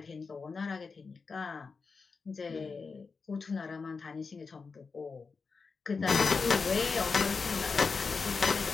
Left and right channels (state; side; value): quieter; right; 4.8 dB